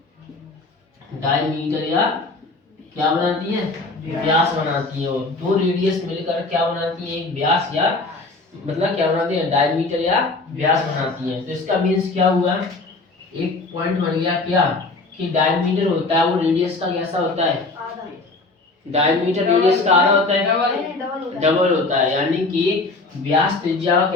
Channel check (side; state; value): right; quieter; 3.4 dB